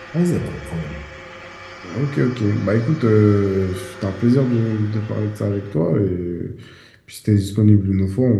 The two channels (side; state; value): both; identical; correlation 1.00